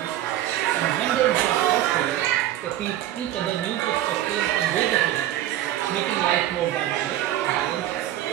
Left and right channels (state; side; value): quieter; left; 13.2 dB